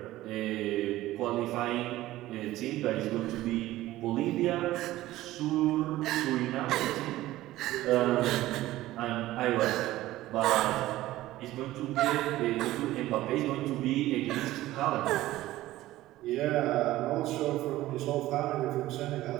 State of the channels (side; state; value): left; quieter; 16.0 dB